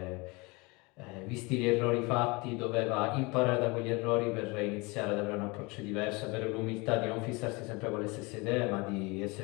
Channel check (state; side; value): quieter; right; 26.3 dB